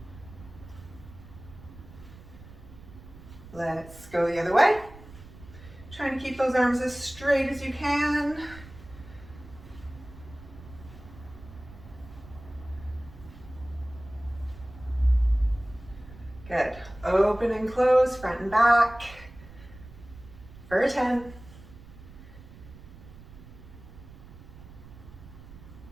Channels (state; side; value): noise; right; rumble, 18 dB below the sound